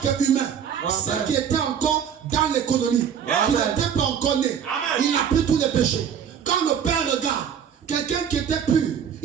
humain, ceux qui étaient encore dans l'économie, qui n'étaient pas encore nés. Il a pris tous les péchés. Quand le Père regarde, quelqu'un qui était pur,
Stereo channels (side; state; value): left; quieter; 8.2 dB